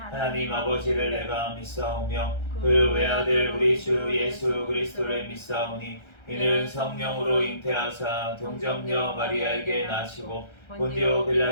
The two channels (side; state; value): right; late; 1.3 ms